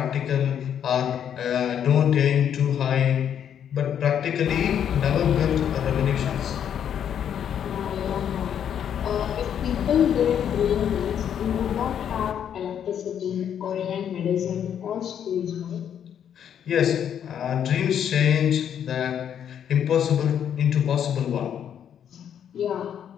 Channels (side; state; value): right; quieter; 9.0 dB